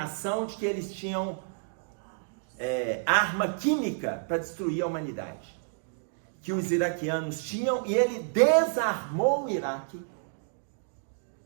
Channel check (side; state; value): left; silent; digital silence